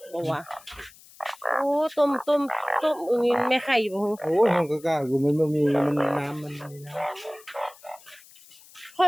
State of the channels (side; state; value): left; noise; hiss, 23 dB below the sound